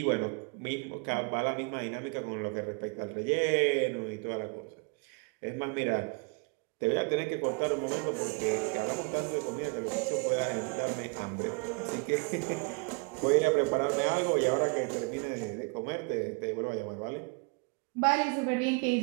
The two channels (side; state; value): left; quieter; 35.1 dB